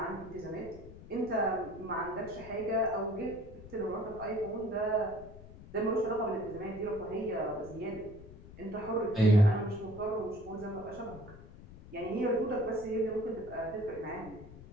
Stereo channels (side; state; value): left; noise; rumble, 17 dB below the sound